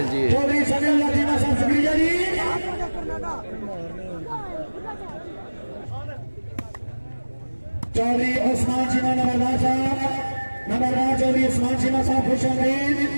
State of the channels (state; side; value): inverted; both; correlation -1.00